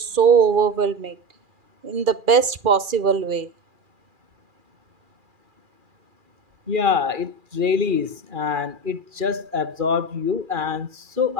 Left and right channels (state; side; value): late; left; 2.4 ms